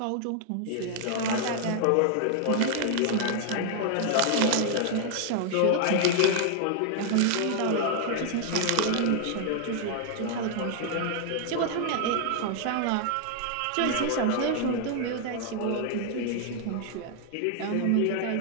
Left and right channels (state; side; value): different; both; correlation 0.00